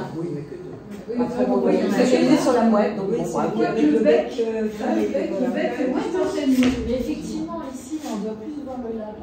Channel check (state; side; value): identical; both; correlation 1.00